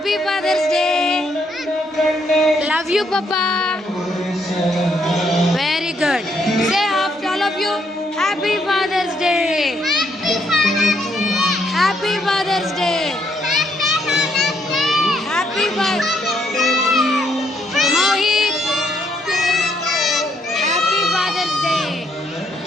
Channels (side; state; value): both; normal; correlation 0.72